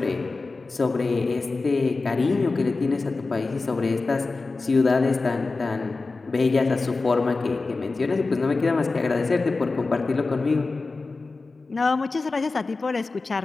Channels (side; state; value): right; quieter; 3.7 dB